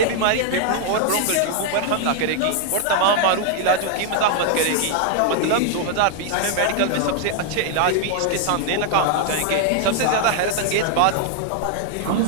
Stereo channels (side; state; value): both; different; correlation 0.00